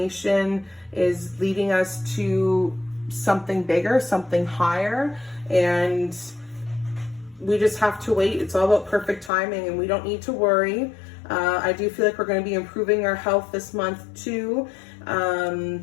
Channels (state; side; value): drops out; right; at 9.3 s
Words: is leading us to something bigger, something higher, and we just have to wait. It's all about perfect timing, and we don't need to worry. I do feel like we're going to be improving our health this month too.